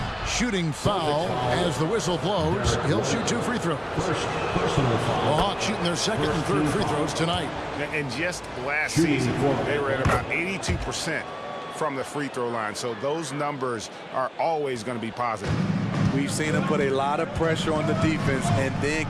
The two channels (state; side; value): identical; both; correlation 1.00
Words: Shooting foul as the whistle blows. He'll shoot 2 free throws. The Hawks shooting their second and third free throws tonight. And just last season, they were at about 82% from the free throw line. So those numbers are always going to be positive. We've seen him put a lot of pressure on the defense and then